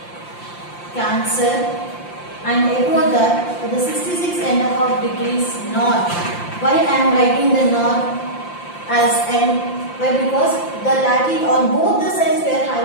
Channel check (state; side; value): late; right; 5.8 ms